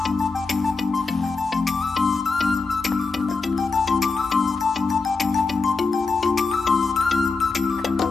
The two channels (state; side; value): quieter; right; 4.2 dB